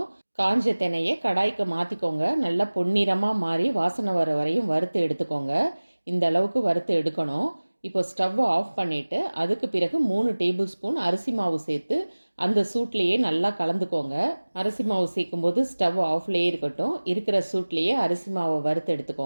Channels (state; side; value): inverted; both; correlation -1.00